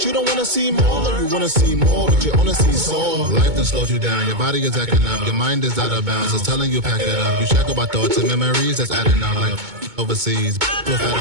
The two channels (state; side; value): late; left; 2.2 ms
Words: you don't wanna see more. You wanna see more, but you wanna see soar. Life done slowed you down. Your body is acting up. Your mind is out of bounds. It's telling you pack it up. You shackle by thoughts and memories that's adding up. Like overseas,